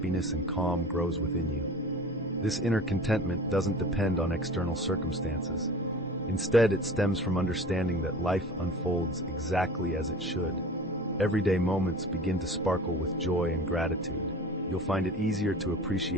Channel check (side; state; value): both; normal; correlation 0.40